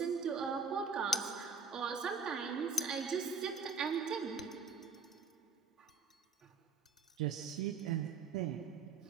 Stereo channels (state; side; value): quieter; left; 5.0 dB